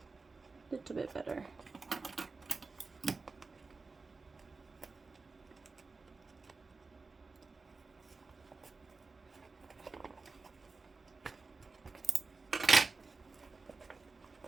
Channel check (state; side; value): quieter; left; 4.1 dB